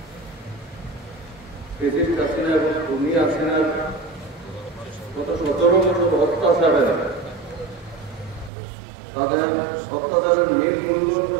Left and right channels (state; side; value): drops out; left; at 8.5 s